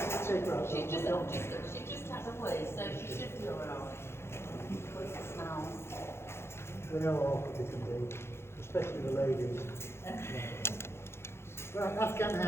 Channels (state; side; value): late; right; 0.12 ms